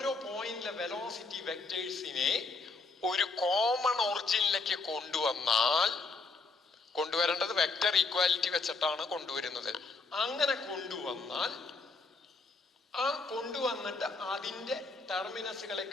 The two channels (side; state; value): right; quieter; 4.0 dB